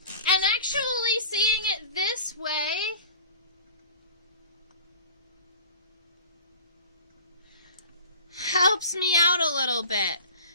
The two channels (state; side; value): inverted; both; correlation -0.40